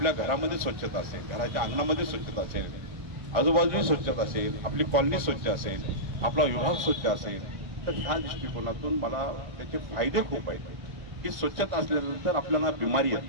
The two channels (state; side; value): late; left; 1.6 ms